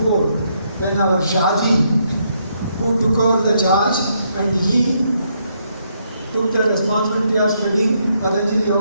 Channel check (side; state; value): both; inverted; correlation -0.75